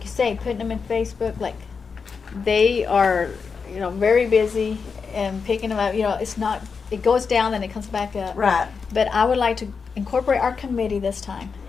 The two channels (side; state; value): right; quieter; 5.4 dB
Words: you say, putting them in Facebook, like, they are, you know, very busy and picking them up, you know, it's not, it goes down and it comes back up. Right. But I would like to incorporate our committee this time